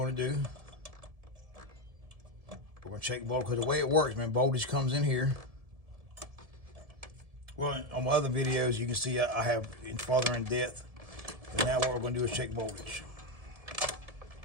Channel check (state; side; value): late; left; 1.7 ms